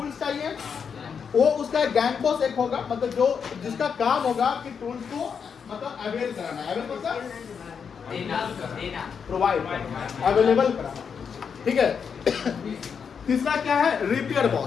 चाहिए। वो उसका एक गैंग बॉस एक होगा, मतलब जो जिसका काम होगा कि टूल्स को मतलब अवेल कराना है। अवेल मतलब प्रोवाइड करना, अवेलेबल कराना। ठीक है। तीसरा क्या है? Repair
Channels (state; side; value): quieter; right; 6.6 dB